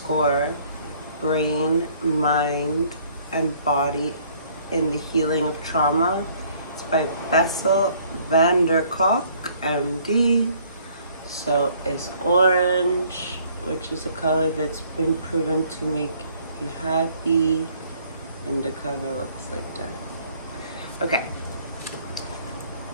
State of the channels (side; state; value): both; inverted; correlation -0.60